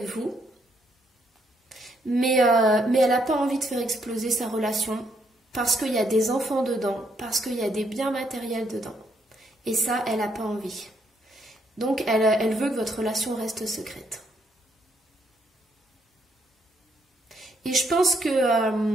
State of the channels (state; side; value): normal; both; correlation 0.73